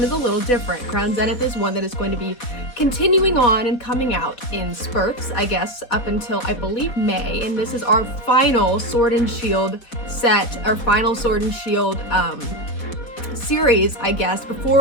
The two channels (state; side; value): late; right; 4.1 ms